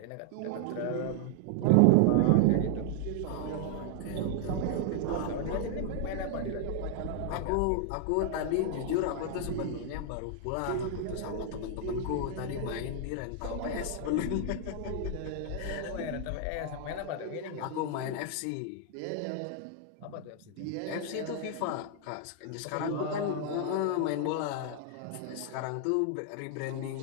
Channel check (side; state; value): both; different; correlation 0.00